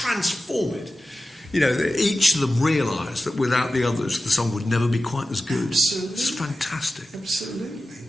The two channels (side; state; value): both; normal; correlation 0.94